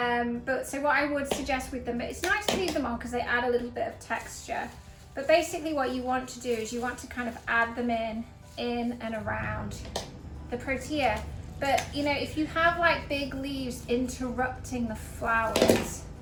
But so what I would suggest with them, it's nice to leave them on because they add a little bit of texture. But basically what you want to do is you want to kind of add them in and around the protea. But you know, if you have like big leaves interrupting the flowers,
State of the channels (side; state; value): both; identical; correlation 1.00